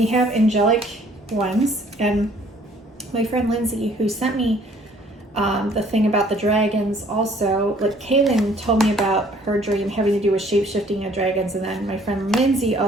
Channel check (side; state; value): both; normal; correlation 0.58